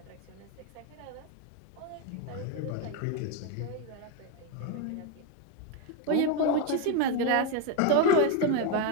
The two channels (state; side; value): different; both; correlation 0.03